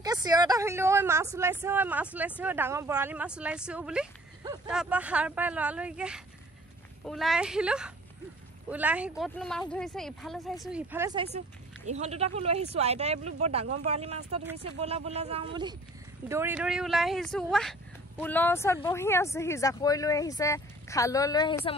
চিঞৰ এটা শুনিলো ঐ মাছ ওলাইছে ডাঙৰ বৰালি মাছ ওলাইছে বুলি তাৰপৰা সাৰ পাই লৰালৰিকে ওলাই আহিলো ওলাই আহি ক'তনো মাছ ধৰিছে ইফালে চাইছো সিফালে চাইছো ইহঁত দুটাকো লৈ আহিছো আইতাই বোলো বৰ ডাঙৰ বৰালি মাছ এটা ধৰিছে বলা যাওঁ বুলি দৌৰি ওলাই আহিছো ৱাহ পুলৰ ওচৰত বহি আছে সি জাকৈ লৈ আহিছে খালৈ লৈ আহিছে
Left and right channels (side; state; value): both; normal; correlation 0.51